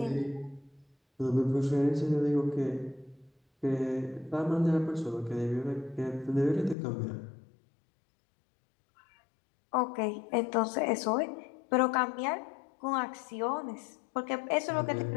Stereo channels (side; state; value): right; drops out; at 6.8 s